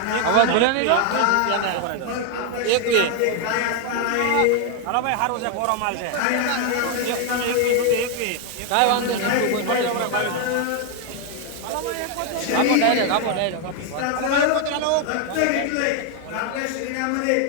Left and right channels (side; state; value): both; different; correlation 0.00